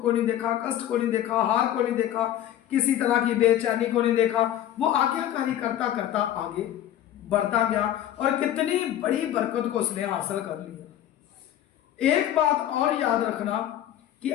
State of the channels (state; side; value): quieter; right; 11.7 dB